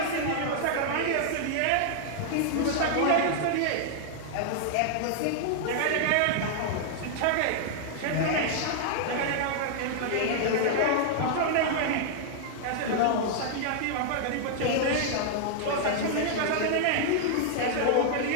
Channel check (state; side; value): different; both; correlation -0.01